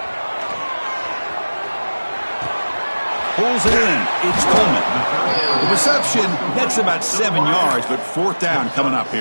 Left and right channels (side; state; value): both; inverted; correlation -1.00